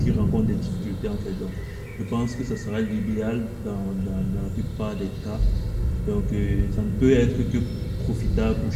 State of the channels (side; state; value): both; identical; correlation 1.00